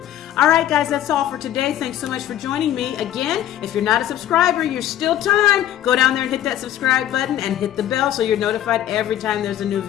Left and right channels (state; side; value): quieter; right; 11.9 dB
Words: All right, guys, that's all for today. Thanks so much for joining me. Again, if you're not a subscriber, you're still time. Go down there and hit that subscribe button and hit the bell so you're notified every time there's a new